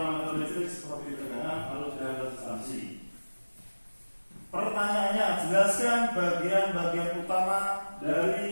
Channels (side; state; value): both; inverted; correlation -1.00